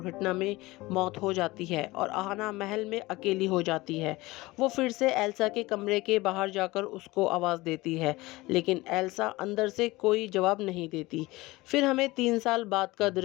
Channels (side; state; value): right; quieter; 20.4 dB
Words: में मौत हो जाती है और आहाना महल में अकेली हो जाती है। वो फिर से एल्सा के कमरे के बाहर जाकर उसको आवाज़ देती है, लेकिन एल्सा अंदर से कोई जवाब नहीं देती। फिर हमें 3 साल बाद का